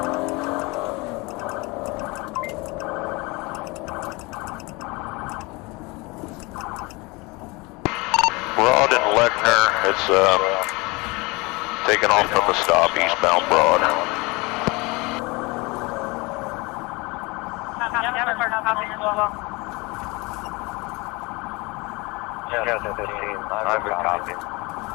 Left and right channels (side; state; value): right; quieter; 25.5 dB